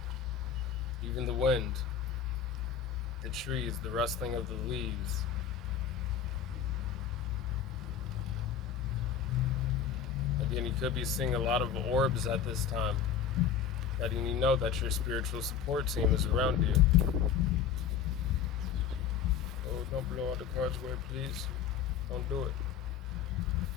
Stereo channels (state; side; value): quieter; right; 7.9 dB